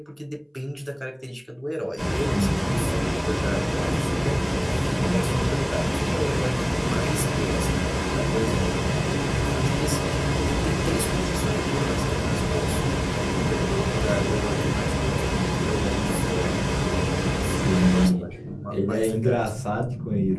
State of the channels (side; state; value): both; identical; correlation 1.00